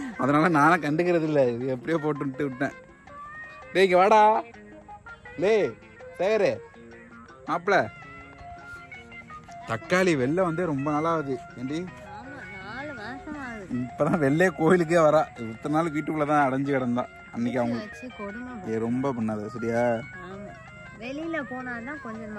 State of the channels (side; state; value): both; identical; correlation 1.00